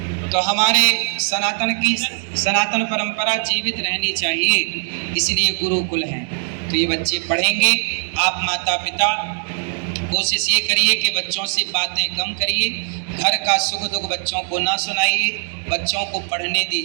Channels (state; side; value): silent; left; digital silence